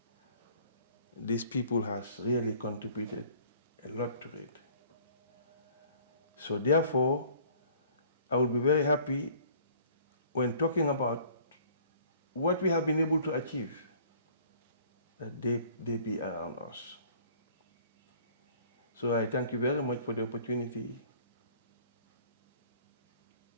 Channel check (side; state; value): both; inverted; correlation -0.53